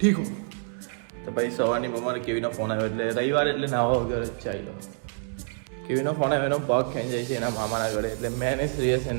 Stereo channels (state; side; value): silent; left; 60 dB below the other